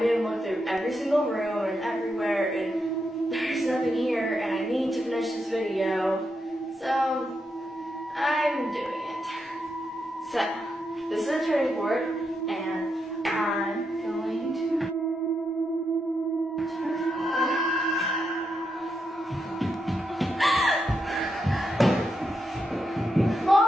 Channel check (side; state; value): both; normal; correlation 0.83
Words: made him look through every single room and everywhere, and there's nothing here, and I need to finish this video, so I'm doing it. So, this is a turning board, and I'm going to